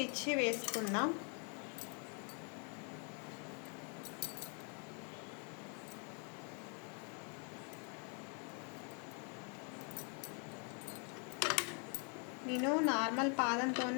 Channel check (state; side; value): quieter; right; 38.8 dB